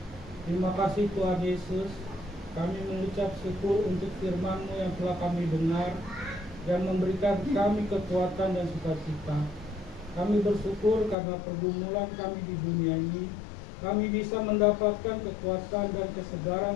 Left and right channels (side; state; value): right; drops out; at 11.2 s